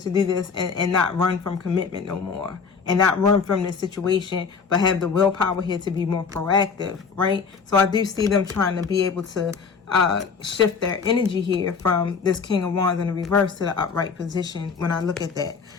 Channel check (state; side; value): quieter; right; 5.6 dB